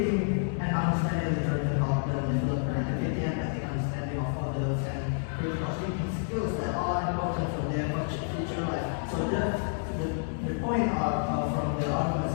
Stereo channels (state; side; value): silent; right; digital silence